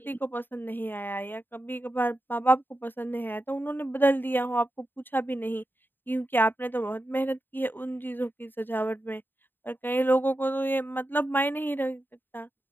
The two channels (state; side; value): late; right; 0.094 ms